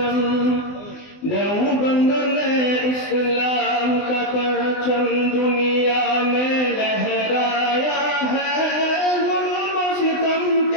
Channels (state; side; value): late; right; 20 ms